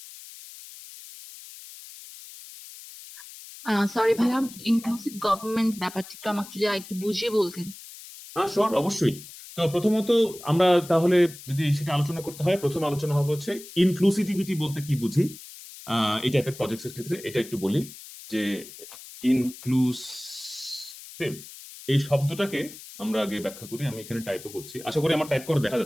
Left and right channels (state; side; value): noise; left; hiss, 16 dB below the sound